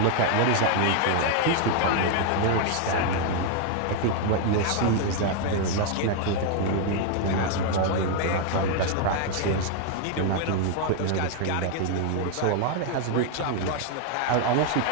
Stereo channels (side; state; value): both; different; correlation 0.00